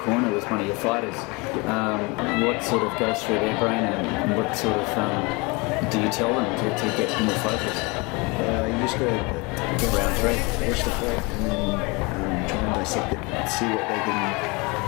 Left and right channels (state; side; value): quieter; right; 27.4 dB